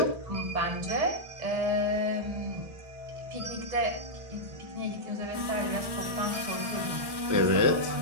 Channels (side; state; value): left; late; 1.2 ms